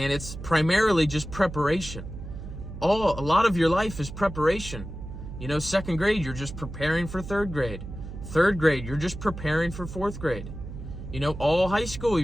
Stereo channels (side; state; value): right; noise; hum, 10 dB below the sound